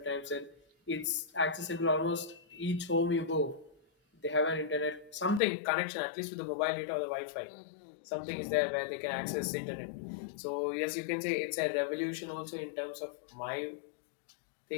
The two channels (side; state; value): right; drops out; at 5.4 s